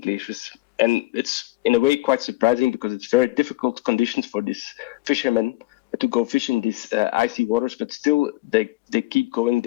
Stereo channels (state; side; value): quieter; right; 20.5 dB